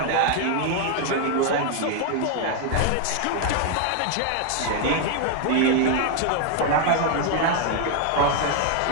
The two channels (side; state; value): both; different; correlation 0.01